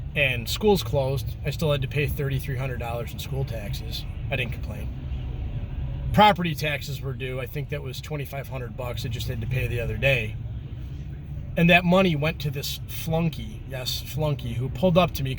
And school's closed. I still had to pay $3,300 in school taxes. I didn't complain. Property taxes were due. I think that was $2,500. I just had to pay the other day. And that money went to this flunky, yes, flunky, who pulled up to me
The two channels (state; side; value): identical; both; correlation 1.00